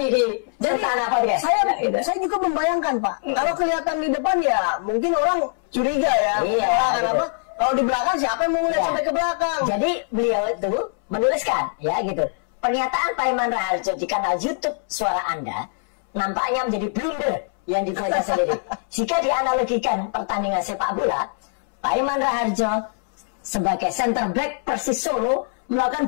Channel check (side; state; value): right; silent; 64 dB below the other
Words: di Sentana Podcast. Saya juga membayangkan, Pak. Kalau kelihatan di depan ya mungkin orang curiga ya. Kenapa? Kalau di belakang siapa yang mau melihat sampai ke belakang? Jadi beliau itu menuliskan ya gitu. Pernyataan Paiman Raharjo di kanal YouTube Suara Anda nampaknya menjadi blunder yang dibuatnya sendiri. Jika dianalogikan pertandingan sepak bola, Paiman Raharjo sebagai center back Persis Solo